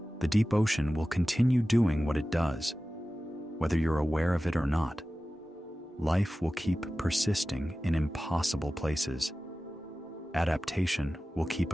The deep ocean will continue doing what it does, whether you're aware of it or not. Life will keep persisting in impossible places. Adaptation will keep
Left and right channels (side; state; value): both; normal; correlation 0.95